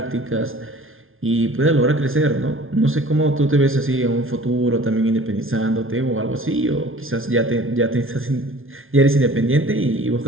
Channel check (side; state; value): left; late; 0.60 ms